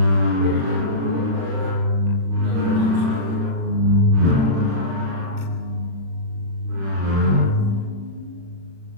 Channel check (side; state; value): left; late; 36 ms